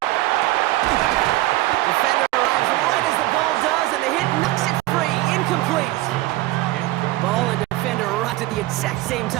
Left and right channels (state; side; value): quieter; left; 17.7 dB